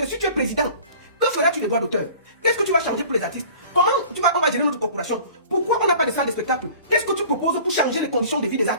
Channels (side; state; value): both; inverted; correlation -0.45